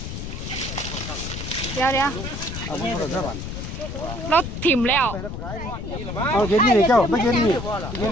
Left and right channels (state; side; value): noise; left; rumble, 7 dB below the sound